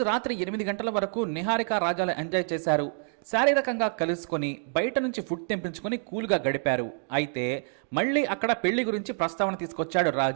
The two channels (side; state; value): left; silent; 57 dB below the other